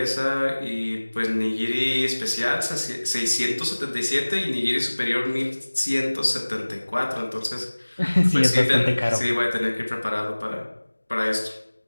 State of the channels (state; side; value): inverted; both; correlation -1.00